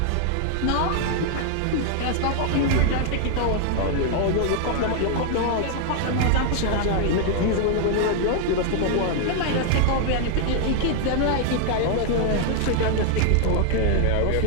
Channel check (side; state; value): both; different; correlation 0.00